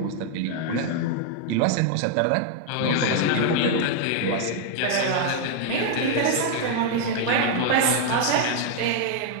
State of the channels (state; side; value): different; both; correlation 0.00